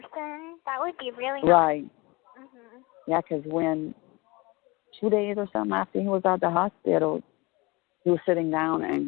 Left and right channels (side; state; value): right; quieter; 24.7 dB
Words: That would be really nice. Right. Yeah, because when 2 days or something after he was out the hospital, he was sitting down